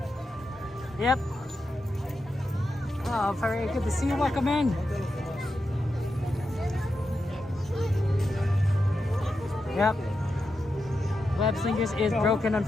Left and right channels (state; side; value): normal; both; correlation 0.88